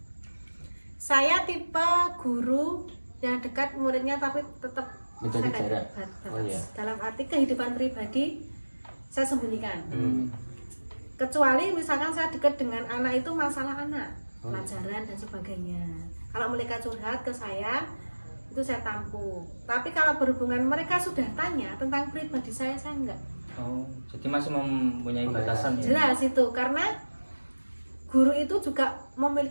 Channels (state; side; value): inverted; both; correlation -1.00